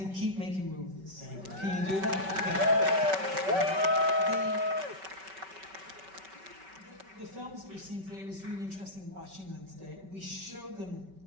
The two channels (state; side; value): late; left; 5.2 ms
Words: keep making movies. Thank you. Can you do that? The films that we've seen today, it was really interesting watching them today. We showed them